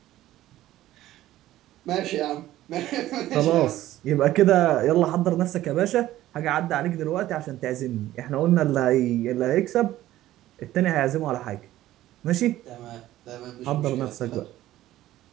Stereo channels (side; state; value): left; quieter; 14.5 dB